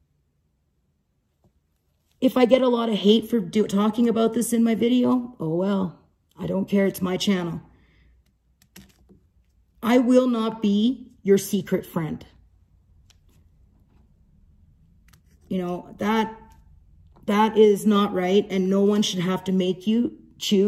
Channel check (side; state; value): both; identical; correlation 1.00